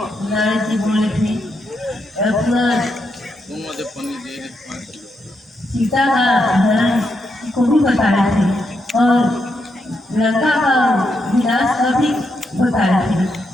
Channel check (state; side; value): normal; both; correlation 0.81